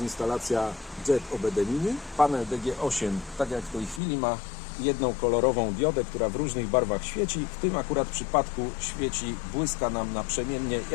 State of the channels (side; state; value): right; drops out; at 4.0 s